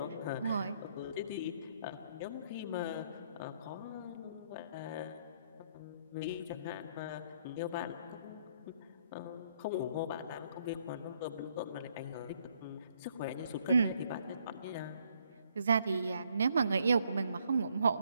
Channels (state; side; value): inverted; both; correlation -0.70